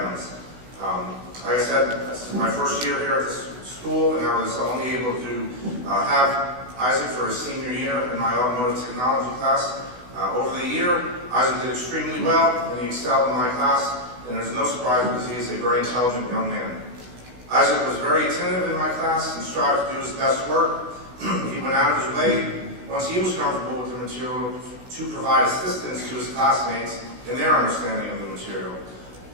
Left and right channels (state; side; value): late; left; 16 ms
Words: Like I said, this is my first year here at this school, and I was only able to have Isai for his senior year in my automotive technology class. Over the year, Isai did extremely well, and he excelled in my class, and there's no surprise because he is a very intelligent young man. Isai was very attentive in my class and strived to do his best work. He went out of his way, once he was comfortable with the material, to provide assistance to his classmates in their understanding of the material.